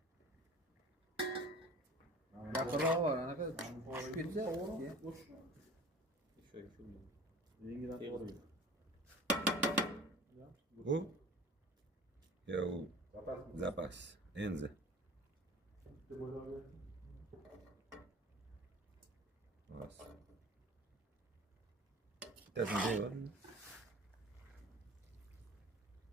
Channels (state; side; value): normal; both; correlation 0.42